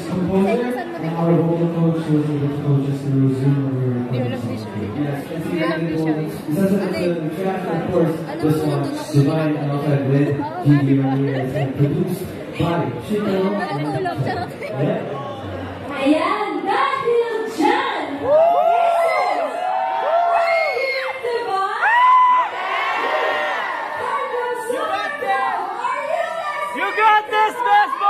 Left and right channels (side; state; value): both; identical; correlation 1.00